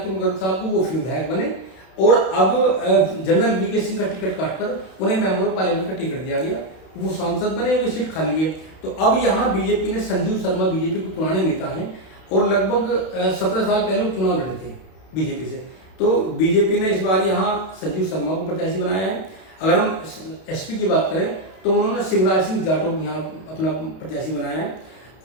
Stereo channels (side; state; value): right; late; 32 ms